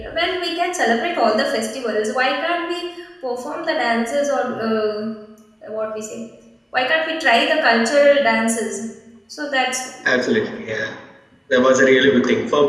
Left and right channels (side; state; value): both; identical; correlation 1.00